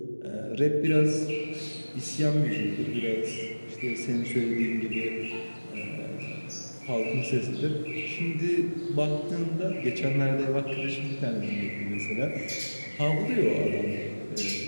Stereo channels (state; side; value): inverted; both; correlation -1.00